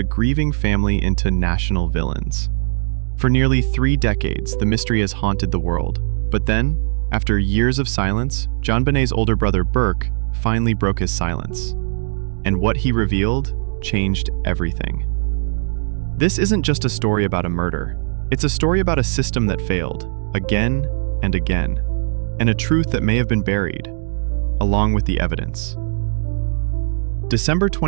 grieving family into national villains. For nearly 3 decades, the mystery has haunted the world. But then, after years of silence, JonBenet's older brother Burke finally broke his silence. And what he revealed changed everything. This isn't just a story about a murder. It's a story about a system that failed, again and again, and a truth that may have been buried, along with the evidence. December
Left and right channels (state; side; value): silent; left; digital silence